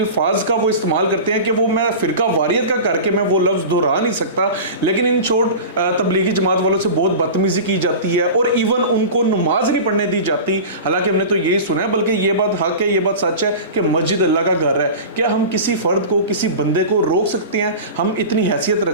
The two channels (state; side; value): inverted; both; correlation -0.32